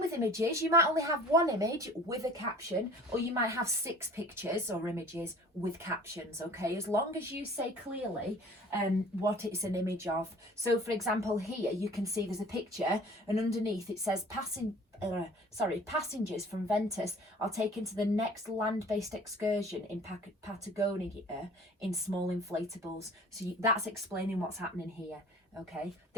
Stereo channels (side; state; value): both; normal; correlation 0.47